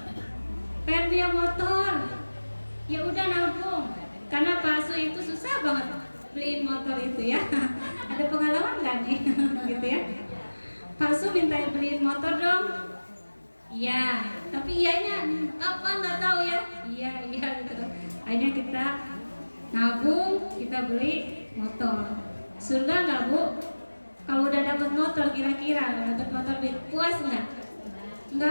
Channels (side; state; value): both; inverted; correlation -1.00